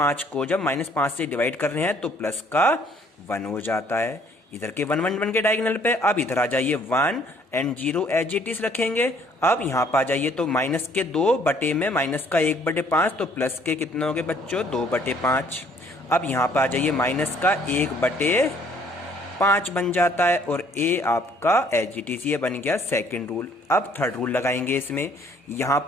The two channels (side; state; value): both; normal; correlation 0.61